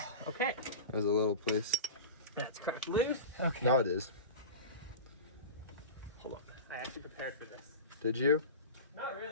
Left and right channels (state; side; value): inverted; both; correlation -0.30